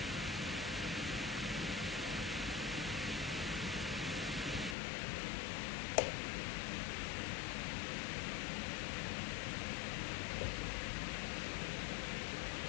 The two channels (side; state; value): right; drops out; at 4.8 s